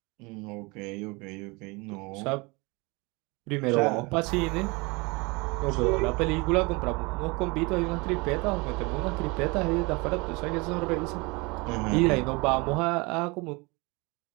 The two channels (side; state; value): left; quieter; 26.6 dB